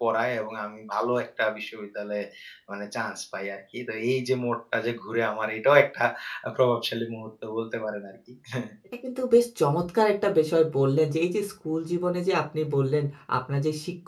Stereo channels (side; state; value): both; identical; correlation 1.00